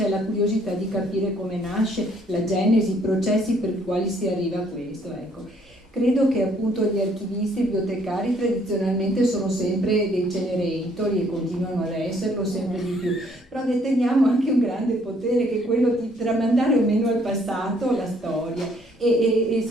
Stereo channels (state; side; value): normal; both; correlation 0.65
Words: la curiosità di capire come nasce, la genesi, i processi per i quali si arriva a questo. Ecco. Credo che appunto gli archivisti e bibliotecari tradizionalmente sono sempre dei cenerentori e continuano ad esserlo sempre di più, però deteniamo anche un grande potere che è quello di tramandare o meno al passato la storia e